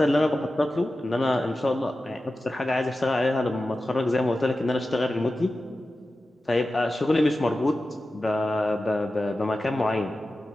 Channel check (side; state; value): both; normal; correlation 0.94